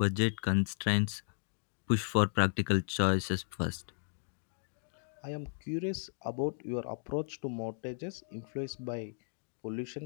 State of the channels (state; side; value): silent; right; 54 dB below the other